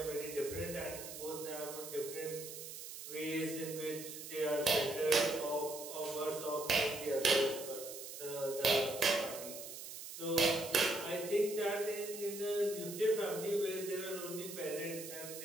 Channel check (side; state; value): right; noise; hiss, 10 dB below the sound